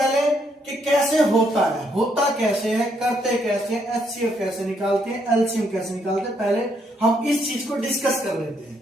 कि कैसे होता है, होता कैसे है, करते कैसे हैं, एचसीएफ कैसे निकालते हैं, एलसीएम कैसे निकालते हैं। पहले हम इस चीज को डिस्कस कर लेते हैं।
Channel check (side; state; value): both; normal; correlation 0.73